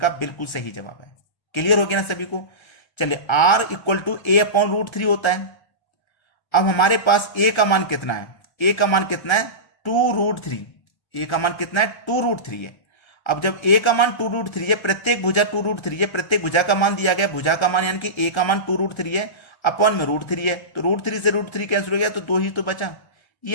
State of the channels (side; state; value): right; late; 1.3 ms